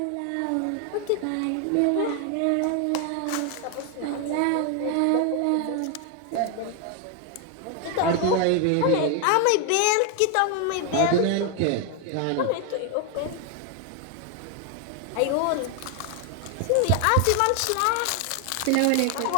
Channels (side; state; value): both; different; correlation 0.01